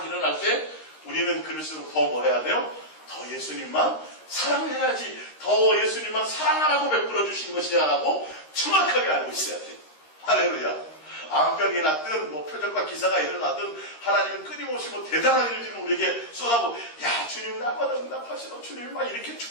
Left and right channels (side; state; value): right; late; 13 ms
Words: 일어날 때 우리는 그럴수록 더 뭐 해야 돼요? 더 예수님만 사랑해야지. 더 예수님만 사랑하라고 베풀어 주신 것이야라고 정확하게 알고 있어야 돼. 할렐루야. 암병이 났든 뭐 표적과 기사가 일어나든 하나님은 끊임없이 뭐 대단한 일들을 우리에게 쏟아고, 야 주님 날마다 응답하시고 주님 막 이렇게